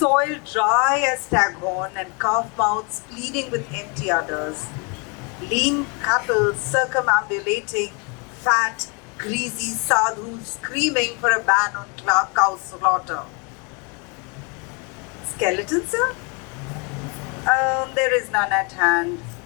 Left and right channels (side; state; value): right; quieter; 31.9 dB